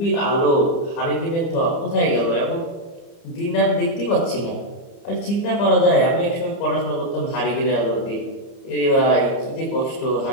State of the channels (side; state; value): right; late; 30 ms